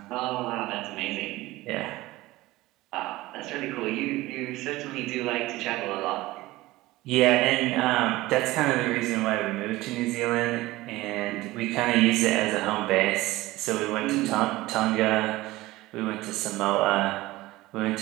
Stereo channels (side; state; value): left; quieter; 18.5 dB